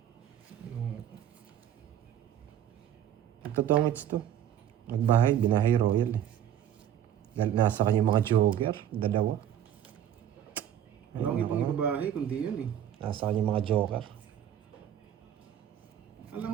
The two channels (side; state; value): left; quieter; 10.2 dB